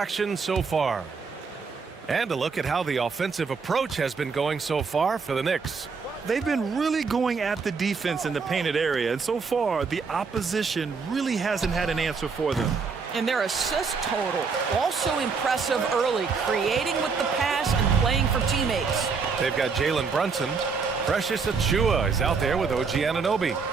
so far. And a look at how the offensive approach has been going so far for the Knicks. They've been really going at the defense in the painted area, and so far, the opposition really hasn't had an answer for them. And their assist total, also impressive early, creating with the pass and playing for teammates. They've got Jalen Brunson. Precious Achua is out there with OG Anunoby.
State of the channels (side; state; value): left; quieter; 5.2 dB